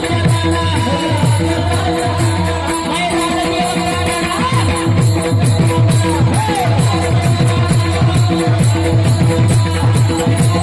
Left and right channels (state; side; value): identical; both; correlation 1.00